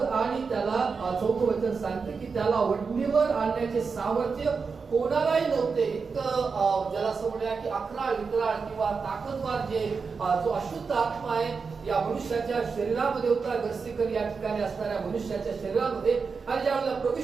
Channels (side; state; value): left; quieter; 5.1 dB